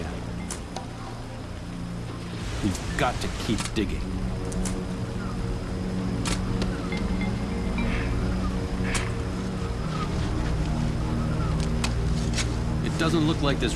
We've got to keep digging. It doesn't look like this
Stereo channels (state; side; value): identical; both; correlation 1.00